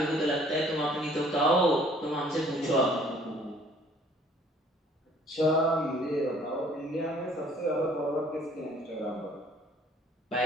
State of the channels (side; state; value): both; normal; correlation 0.57